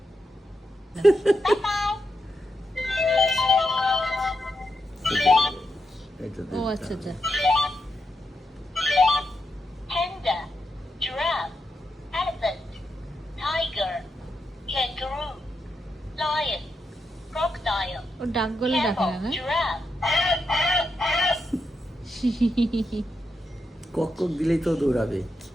ও আচ্ছা আচ্ছা। Panda, giraffe, elephant, tiger, kangaroo, lion, crocodile, ও ডাক গলে ডাকে camel, না? giraffe, কক কক দিলেই তো দৌড়াবে।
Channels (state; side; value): normal; both; correlation 0.85